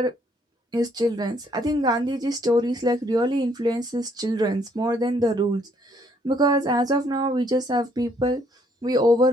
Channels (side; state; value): both; normal; correlation 0.67